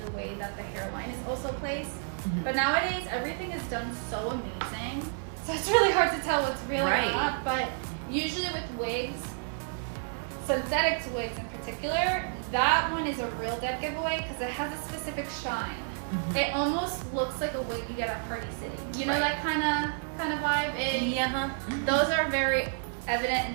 the way that the hairline is also placed. But nowadays everything is done so amazing, so it's really hard to tell what's real or not. But usually with wigs, synthetic wigs in particular, that one is a real dead giveaway because it has a specific shine. It almost looks like a wig you get at Party City. That kind of vibe. And those are very evident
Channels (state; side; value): silent; left; 58 dB below the other